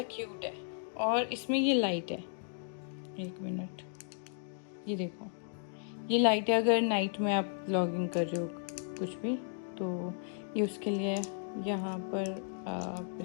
क्यूट है, और इसमें ये लाइट है, 1 मिनट, ये देखो ये लाइट है। अगर नाइट में आप व्लॉगिंग कर रहे हो कुछ भी, तो ये उसके लिए यहाँ पर आप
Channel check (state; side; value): silent; right; digital silence